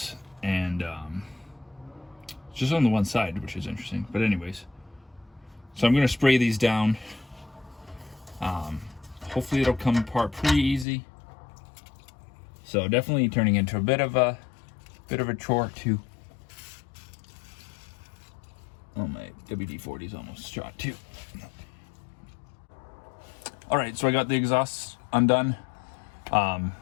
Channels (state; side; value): drops out; right; at 10.9 s